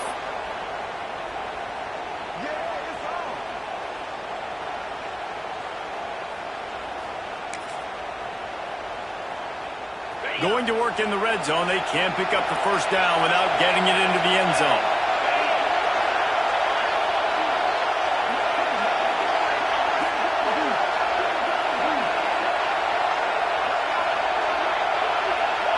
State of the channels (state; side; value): identical; both; correlation 1.00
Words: Going to work in the red zone, they can't pick up the first down without getting it into the end zone.